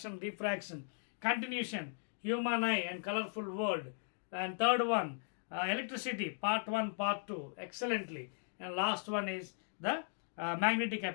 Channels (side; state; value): right; silent; digital silence